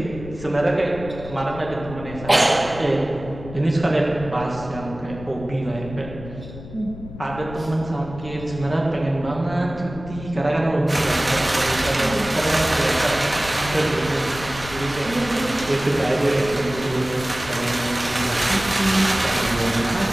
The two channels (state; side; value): noise; left; rumble, 13 dB below the sound